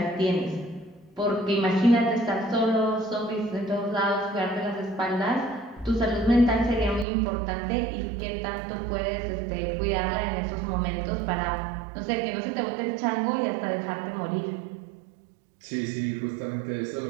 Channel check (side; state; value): left; drops out; at 7.1 s